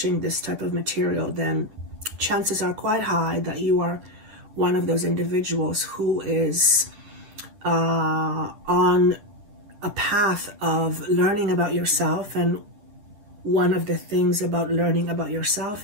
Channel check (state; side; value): late; left; 10 ms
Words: type of material, then chances are quite high that you are one of those individuals who is on a path of learning about yourself. And one of the things about learning about yourself